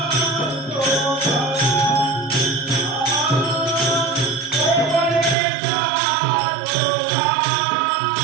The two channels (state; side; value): drops out; left; at 5.4 s